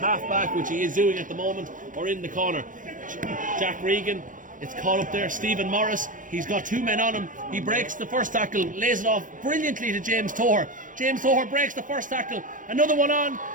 back, which he is doing at the moment, or in the corner. Jack Regan, it's caught up there. Stephen Morris, he's got two men on him. He breaks the first tackle, lays it off brilliantly to James Toher. James Toher breaks the first tackle. Another one on.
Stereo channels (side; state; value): left; late; 0.38 ms